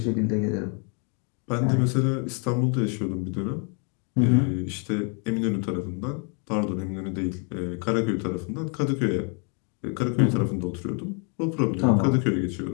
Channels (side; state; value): right; quieter; 38.2 dB